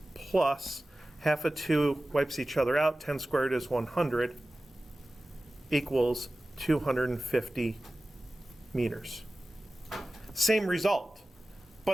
plus 1/2 of 2 wipes each other out. 10 squared is 100 equals 250 meters. Same result,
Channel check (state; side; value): normal; both; correlation 0.96